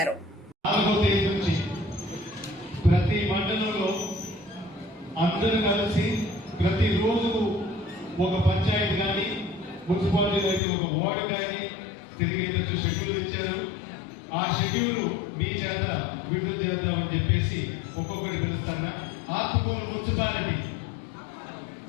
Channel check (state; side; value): drops out; right; at 10.6 s